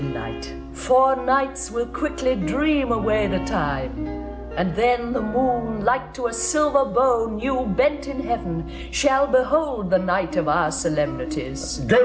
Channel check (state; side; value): identical; both; correlation 1.00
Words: night. 4 nights will quickly dream away the time. And then the moon, like to a silver bow new bent in heaven, shall behold the night of our solemnities.